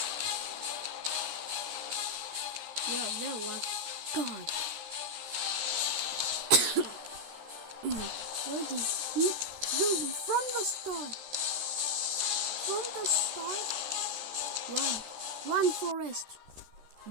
Yeah, there was. God. Where did he? Dude, from the start. Run, Forrest.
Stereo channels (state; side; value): late; left; 13 ms